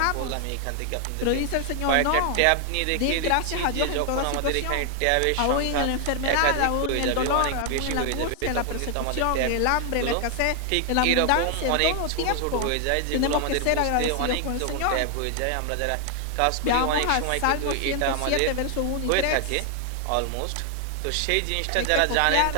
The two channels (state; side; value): different; both; correlation 0.00